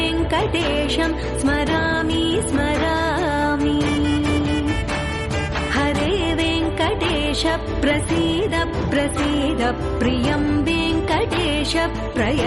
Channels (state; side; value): identical; both; correlation 1.00